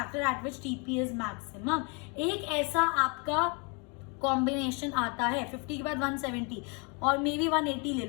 at which TP is maximum. एक ऐसा आपका कॉम्बिनेशन आता है 50 के बाद 170 और मे बी 180 ले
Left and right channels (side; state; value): right; quieter; 33.7 dB